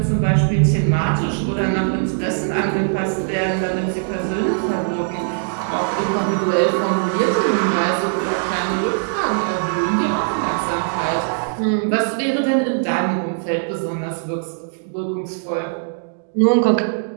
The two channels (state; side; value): silent; left; digital silence